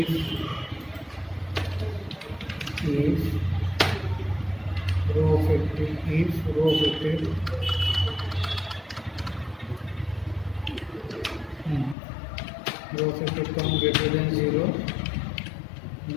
row affected, if row affected row affected count greater than 0,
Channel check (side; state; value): right; drops out; at 12.0 s